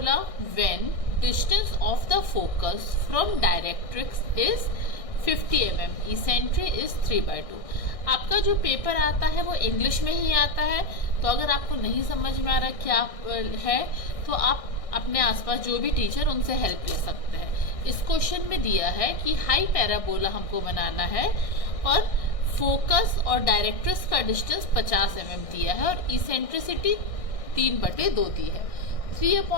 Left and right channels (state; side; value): late; right; 1.6 ms